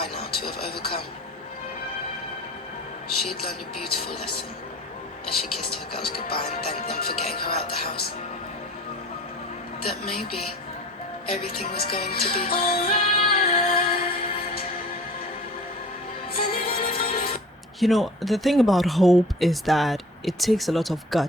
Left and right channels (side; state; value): both; normal; correlation 0.42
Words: now to have overcome, she had learned a beautiful lesson as she kissed her girls goodbye and thanked them for getting her out the house. That maybe everything was going to be alright. You know, the thing about hope is that it takes a lot of